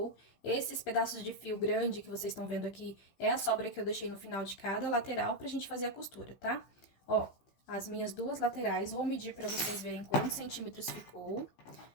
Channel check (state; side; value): late; right; 16 ms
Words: Esses pedaços de fio grande que vocês estão vendo aqui é a sobra que eu deixei no final de cada lateral pra gente fazer a costura, tá? Ó, as minhas duas laterais, vou medir pra vocês verem quantos centímetros ficou.